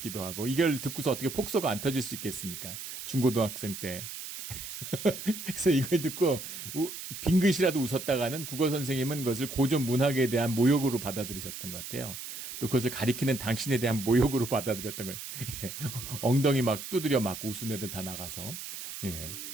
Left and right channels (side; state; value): right; noise; hiss, 9 dB below the sound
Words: 하고 이걸 듣고서 어떻게 폭소가 안 터질 수 있겠습니까? 중고등학생 때. 그래서 이걸 듣고 빙긋이라도 웃었다가는 국어 선생님은 그것을 고전 문학에 대한 모욕으로 받아들이셨던 것 같아요. 또 그것을 가리키는 당신에 대한 모욕으로 받아들였던 거예요. 엉덩이 막 두드려 맞고 웃은 애들 다 나가서.